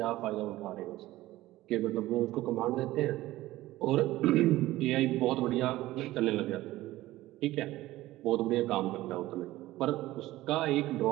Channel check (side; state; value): left; quieter; 16.6 dB